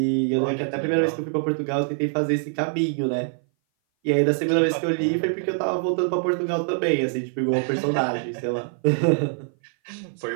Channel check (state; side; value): silent; left; 58 dB below the other